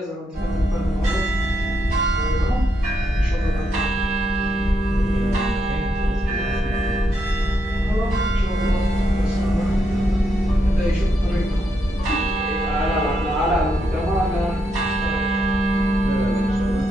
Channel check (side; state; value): both; normal; correlation 0.80